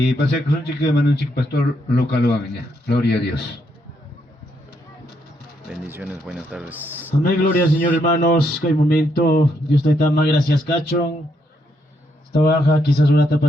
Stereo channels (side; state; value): both; normal; correlation 0.76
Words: pasé con un chico de manunchik pastor local. Gloria a Dios. Bendiciones, buenas tardes. Amén, gloria al Señor, hermanos. Que hay momento, Dios te da más gracias, cachón. Esta baja, quizás una tapa